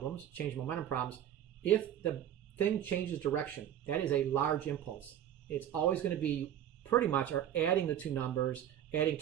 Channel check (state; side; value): quieter; left; 10.6 dB